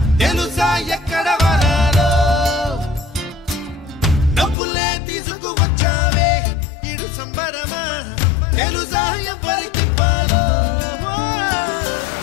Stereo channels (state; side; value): drops out; right; at 4.5 s